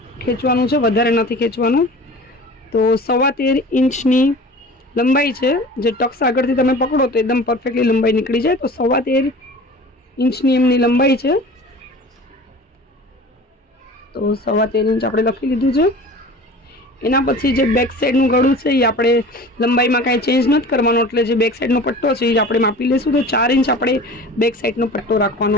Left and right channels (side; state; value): both; normal; correlation 0.40